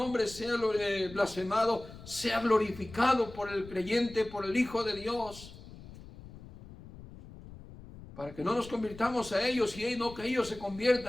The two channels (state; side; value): noise; left; rumble, 17 dB below the sound